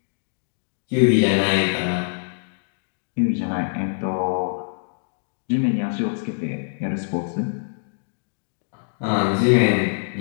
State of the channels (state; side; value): silent; right; digital silence